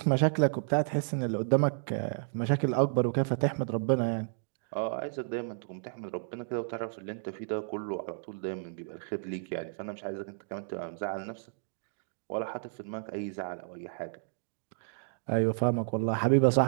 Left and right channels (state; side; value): silent; left; digital silence